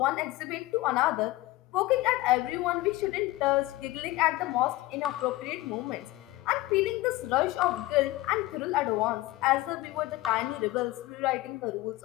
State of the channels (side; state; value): right; quieter; 18.3 dB